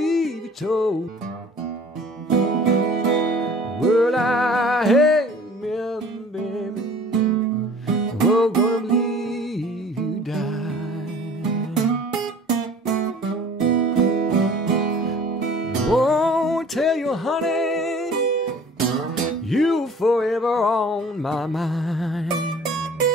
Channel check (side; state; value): both; normal; correlation 0.47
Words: you told. Well, I hate me, baby. We're gonna believe you die. Oh, tell you, honey, you forever on my mind.